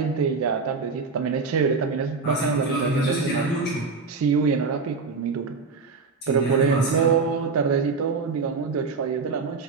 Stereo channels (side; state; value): left; quieter; 4.6 dB